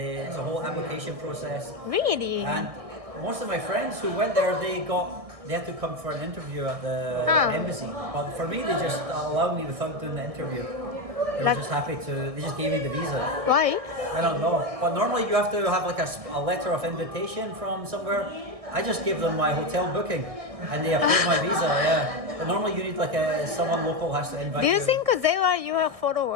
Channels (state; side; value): late; left; 1.6 ms